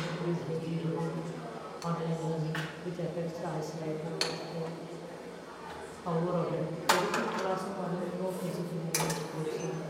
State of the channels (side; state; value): both; identical; correlation 1.00